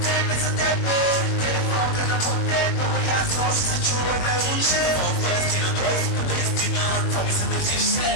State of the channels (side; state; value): right; late; 21 ms